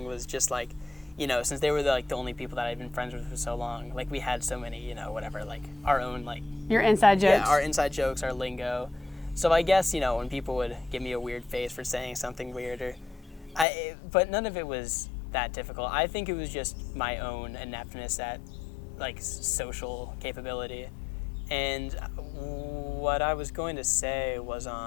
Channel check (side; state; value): right; drops out; at 13.7 s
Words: was just like, since they were the only people that I'd been friends with for so long, like we had so many, whatever, like our own like your inside jokes. Yeah, our inside jokes, our lingo. So I guess, when people would give me a weird face for saying something weird, but none of it was that difficult. I think it was just my own ineptness at like social capability. And what I was going to say was,